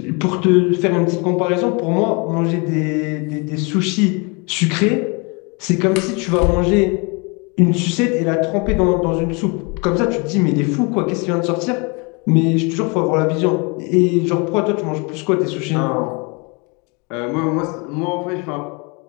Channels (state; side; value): quieter; right; 31.0 dB